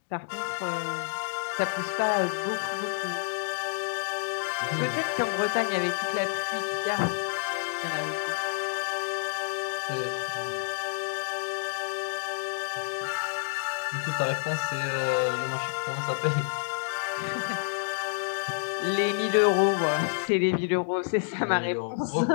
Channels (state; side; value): silent; right; digital silence